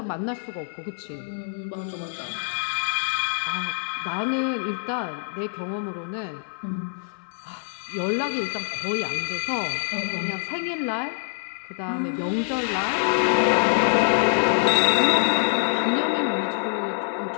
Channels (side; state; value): right; silent; 62 dB below the other